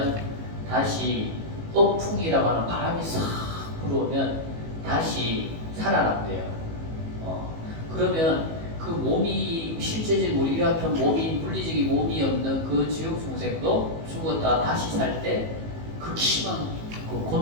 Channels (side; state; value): left; late; 18 ms